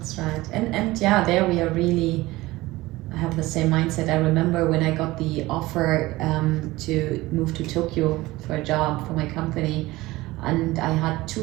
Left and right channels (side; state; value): left; quieter; 19.1 dB